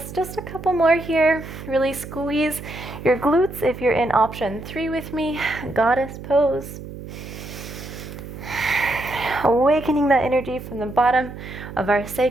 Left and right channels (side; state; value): right; noise; hum, 12 dB below the sound